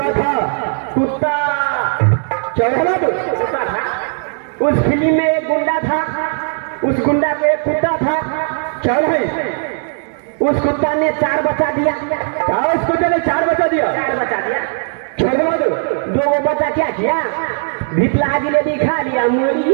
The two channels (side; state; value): left; silent; 55 dB below the other